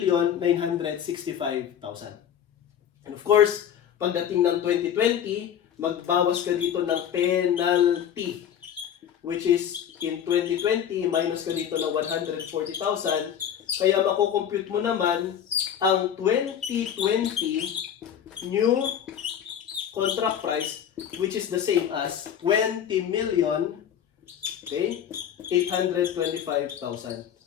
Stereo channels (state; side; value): quieter; right; 9.2 dB